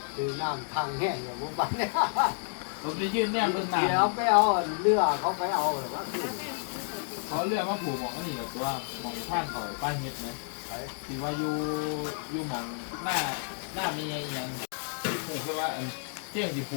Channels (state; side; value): silent; right; 58 dB below the other